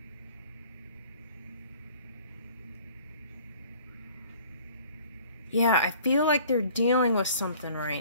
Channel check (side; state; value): both; inverted; correlation -0.51